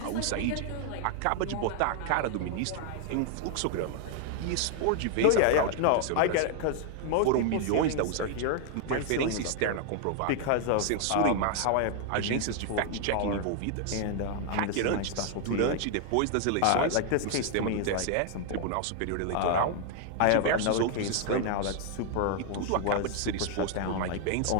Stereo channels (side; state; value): both; different; correlation 0.00